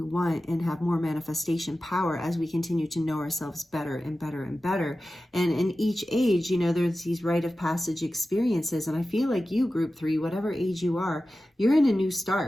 and have more manifestation power as we continue to know ourselves better and better and better. And in each age, there's these rite of passage experiences. And I feel like you, group 3, whatever age you are, you're in a new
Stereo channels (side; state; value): both; normal; correlation 0.94